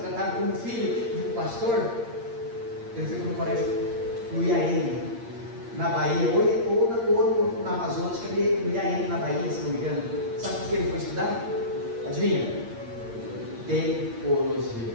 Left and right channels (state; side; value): late; left; 8.6 ms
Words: como filho de um pastor, ele foi para o colégio no IAN, na Bahia, ou na Amazonas, que ele no IAN na Bahia, se não me engano. Sabe por que ele foi estudar? Adivinha? Teologia.